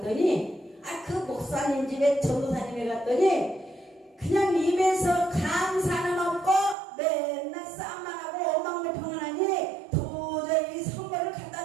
그 목사님 집에 전도사님에 갔더니 그냥 입에서 감사는 없고 맨날 싸움만 하고 원망불평을 하니 도저히 선물을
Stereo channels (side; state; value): left; drops out; at 6.8 s